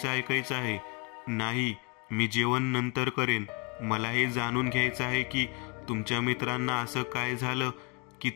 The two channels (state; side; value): quieter; right; 31.7 dB